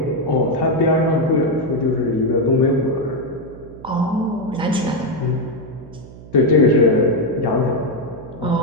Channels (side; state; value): right; noise; hum, 17 dB below the sound